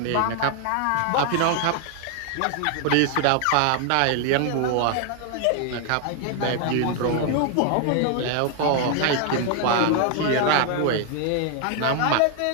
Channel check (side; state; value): both; different; correlation 0.00